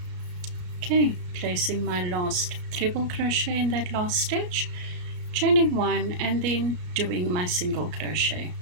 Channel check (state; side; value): late; left; 34 ms